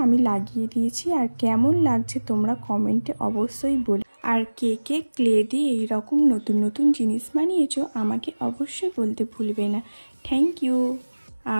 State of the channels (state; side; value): inverted; both; correlation -1.00